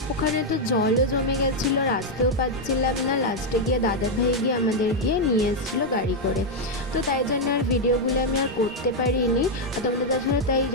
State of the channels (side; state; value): both; normal; correlation 0.00